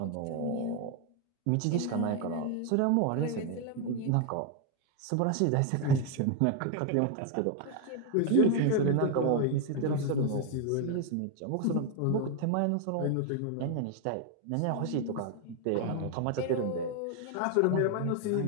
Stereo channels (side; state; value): both; different; correlation 0.01